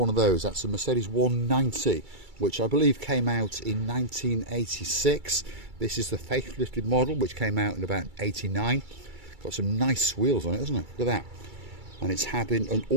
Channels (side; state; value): left; late; 2.3 ms